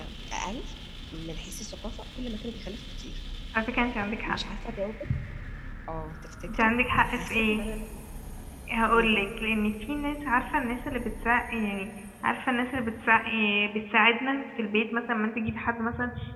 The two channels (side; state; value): both; identical; correlation 1.00